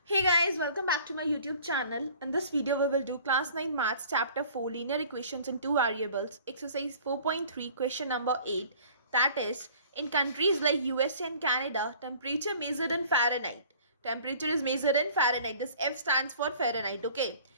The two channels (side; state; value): both; inverted; correlation -0.50